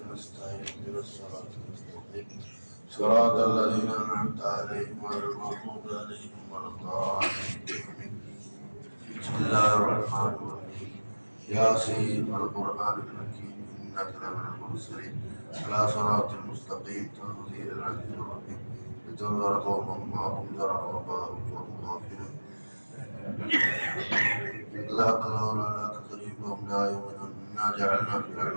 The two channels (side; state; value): both; inverted; correlation -1.00